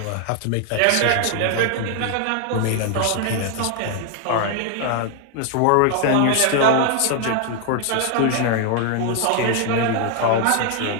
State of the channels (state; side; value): different; both; correlation 0.00